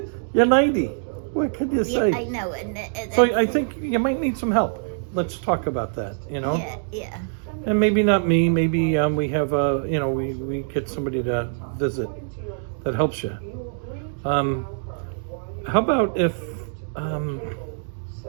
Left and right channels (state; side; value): silent; left; digital silence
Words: You're 90. What could you say? Yeah, I know. So I think you might need some help. Let's talk about that, Yeah. And maybe not me. Maybe we have, we get somebody to visit that helps you. How about if... I'm